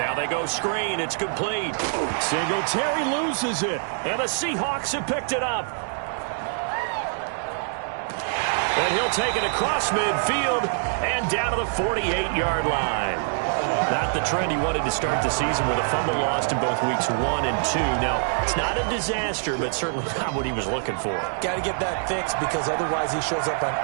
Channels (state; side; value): silent; left; digital silence